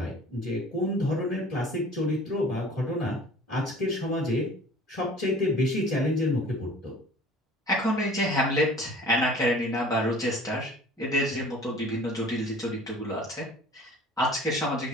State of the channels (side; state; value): both; normal; correlation 0.47